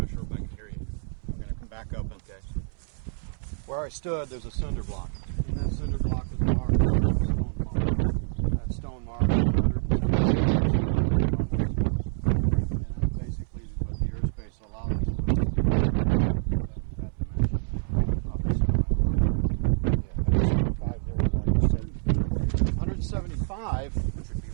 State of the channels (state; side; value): silent; left; 60 dB below the other